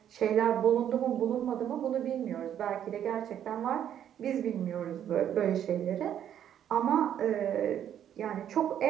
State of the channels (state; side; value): quieter; left; 10.0 dB